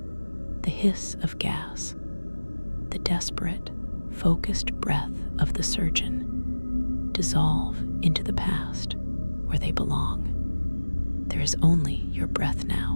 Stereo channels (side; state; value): both; inverted; correlation -1.00